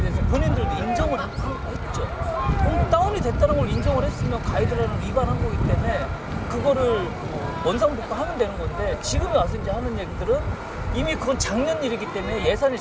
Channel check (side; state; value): both; identical; correlation 1.00